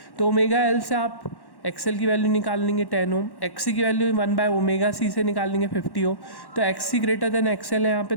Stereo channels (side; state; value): right; late; 1.1 ms